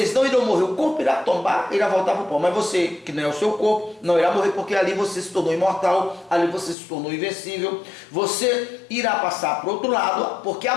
não irão morrer, o corpo irá tombar, irá voltar para o pó, mas você, que não é o seu corpo, não irá morrer, porque ali você se tornou imortal, ali você se tornou invencível, você irá passar para o outro lado, porque a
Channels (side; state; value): right; drops out; at 6.8 s